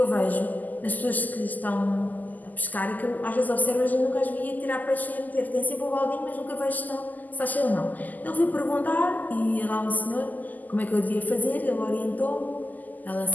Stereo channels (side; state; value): right; late; 0.082 ms